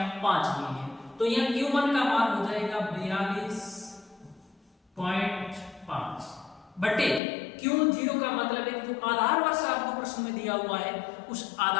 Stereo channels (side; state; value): right; drops out; at 7.2 s